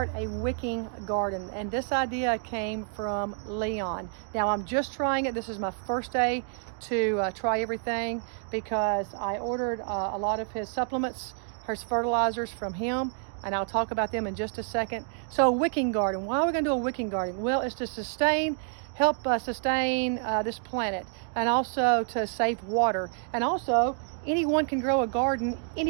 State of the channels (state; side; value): silent; left; 55 dB below the other